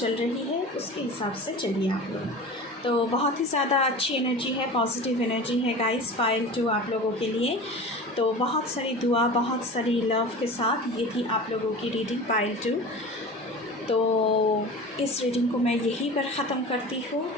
रही है उसके हिसाब से चलिए आप लोग। तो बहुत ही ज़्यादा अच्छी एनर्जी है, पॉजिटिव एनर्जी है गाइस पाइल 2 आप लोगों के लिए। तो बहुत सारी दुआ, बहुत सारी लव के साथ ये थी आप लोगों की रीडिंग पाइल 2। तो इस रीडिंग को मैं यहीं पर ख़त्म करती हूँ।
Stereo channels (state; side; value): normal; both; correlation 0.35